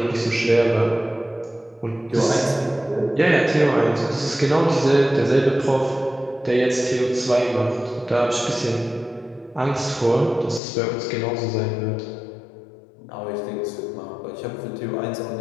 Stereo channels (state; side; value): drops out; right; at 10.6 s